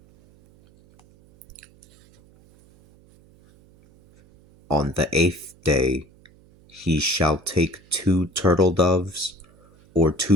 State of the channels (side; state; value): right; noise; hum, 28 dB below the sound